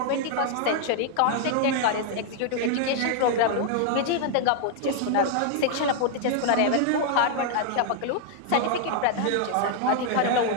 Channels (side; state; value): both; different; correlation 0.00